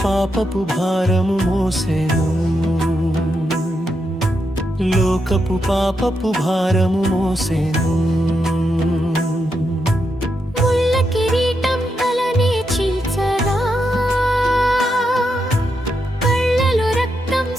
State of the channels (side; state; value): both; normal; correlation 0.83